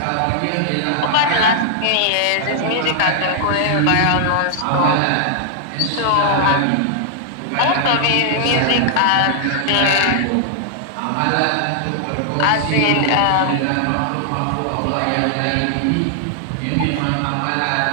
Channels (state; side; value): different; both; correlation 0.00